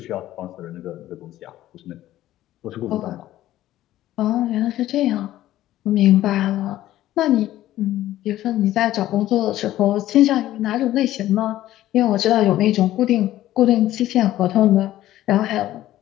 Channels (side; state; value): right; quieter; 14.1 dB